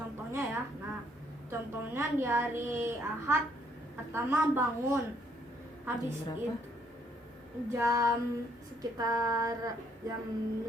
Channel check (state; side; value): normal; both; correlation 0.69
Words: ya. Nah, contohnya di hari Ahad pertama bangun, habis itu sekitar jam